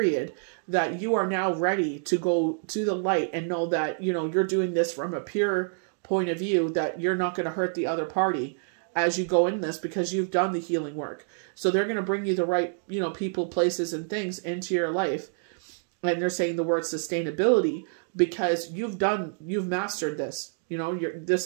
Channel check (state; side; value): silent; left; digital silence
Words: that you are now ready to go to the light and know that, you know, you're doing this from a pure point of view, that you're not going to hurt the other party as you go in this, because you've done the healing work. So they're going to bring you the right, you know, people, places, and things into your life. And they're saying the word sustainability because you've mastered this. You know,